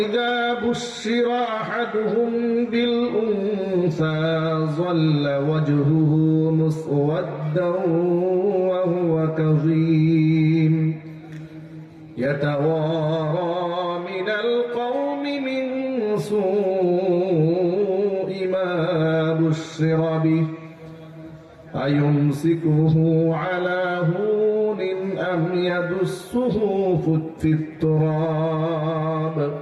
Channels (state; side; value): identical; both; correlation 1.00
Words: بشر أحدهم بالأنثى ظل وجهه مسودا وهو كظيم يتوارى من القوم من سوء ما بشر به أيمسكه على هون أم يدسه في التراب